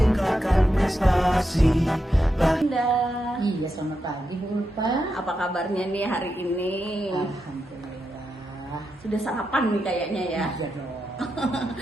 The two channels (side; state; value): both; normal; correlation 0.86